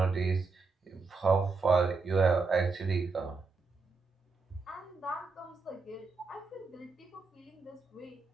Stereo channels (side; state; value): left; quieter; 4.3 dB